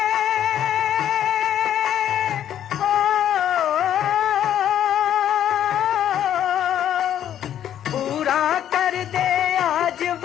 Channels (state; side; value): quieter; right; 10.5 dB